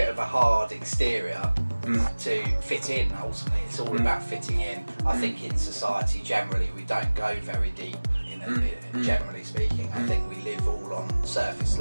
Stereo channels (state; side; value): inverted; both; correlation -1.00